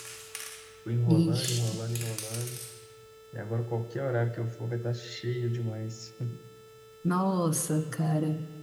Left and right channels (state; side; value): identical; both; correlation 1.00